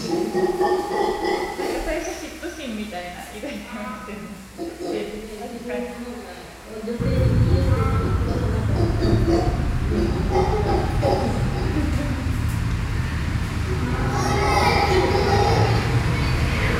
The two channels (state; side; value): identical; both; correlation 1.00